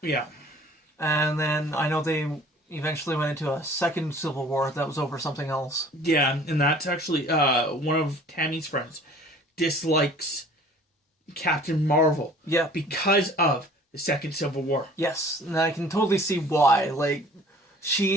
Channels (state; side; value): normal; both; correlation 0.50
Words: Yeah. And then I know they eventually went into a second Civil War that was over something else. Yeah, and that's actually one of Tammy's friends dislikes Captain Marvel. Yeah. Because of the second Civil War. Yes, and I can totally see why.